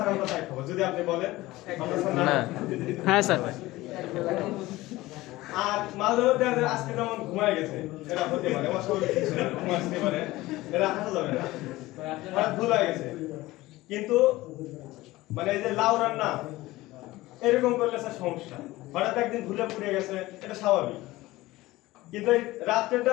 আমরা তাই খাবো। যদি আপনি বলেন আমরা স্যার না। হ্যাঁ স্যার। আর মাঝে মধ্যে আজকে যেমন ঘুমায় গেছে, এরা হতে পারে অস্বাভাবিক কিছু না, ঘুমাতে পারে, এরা হাসা যাবে না, হঠাৎ ভুল হয়ে গেছে। কিন্তু মানে এই যে লাউ রান্না এরকম করলে স্যার সমস্যা, হঠাৎ একদিন ভুলে পুড়ে গেছে, এটা স্বাভাবিক। কিন্তু এই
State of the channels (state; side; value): quieter; right; 18.5 dB